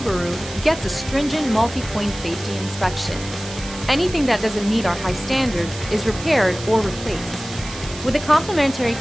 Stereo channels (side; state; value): right; noise; hiss, 13 dB below the sound